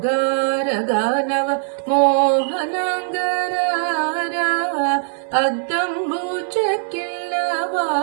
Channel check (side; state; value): left; silent; 58 dB below the other